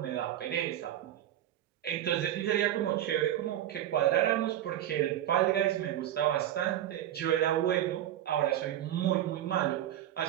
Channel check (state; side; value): quieter; left; 12.0 dB